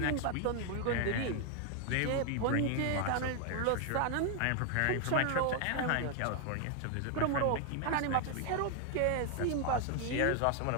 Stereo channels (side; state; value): both; different; correlation 0.01